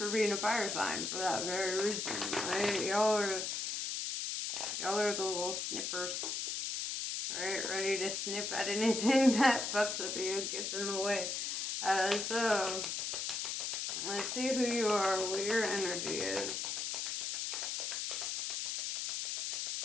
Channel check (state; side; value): noise; left; hiss, 2 dB below the sound